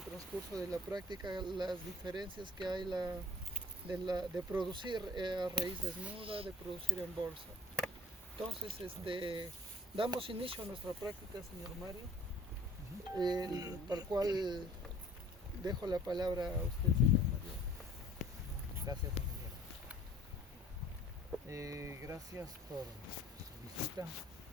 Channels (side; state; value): both; normal; correlation 0.53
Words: transcurso de la práctica las diferencias que hay de producir a raíz desnuda, de producir en bolsa. Entonces, damos inicio a nuestra práctica, señor Mario, para el cual dejo la palabra a usted, señor Mario. Gracias, ingeniero. Gracias por su visita